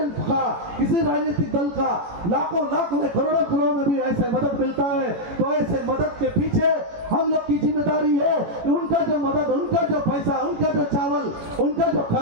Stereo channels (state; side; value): late; left; 18 ms